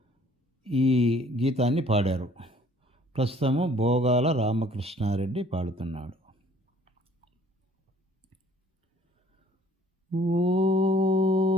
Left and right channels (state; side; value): normal; both; correlation 0.57